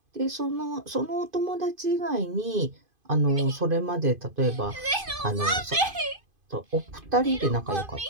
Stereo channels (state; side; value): late; left; 2.5 ms